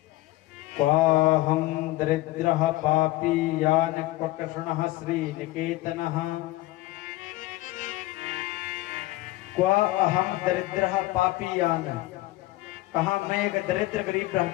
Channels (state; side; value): quieter; right; 18.2 dB